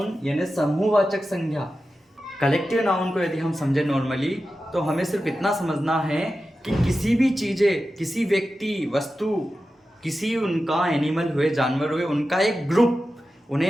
यानी समूहवाचक संज्ञा। कलेक्टिव नाउन को यदि हम समझे नॉर्मली, तो हमें सिर्फ इतना समझना है कि किसी भी चीजें, किसी व्यक्ति, वस्तु, किसी उनका एनिमल हुए, जानवर हुए, उनका एक ग्रुप, उन्हें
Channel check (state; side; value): normal; both; correlation 0.92